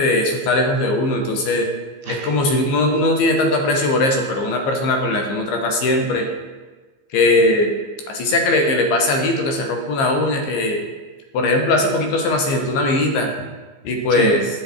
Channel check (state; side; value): late; right; 15 ms